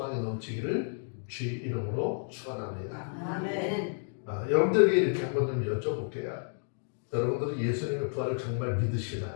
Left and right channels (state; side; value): silent; right; digital silence